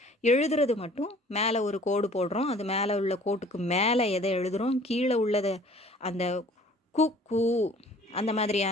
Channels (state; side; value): normal; both; correlation 0.52